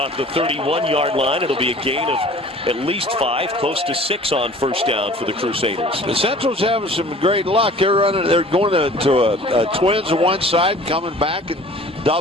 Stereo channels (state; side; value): normal; both; correlation 0.47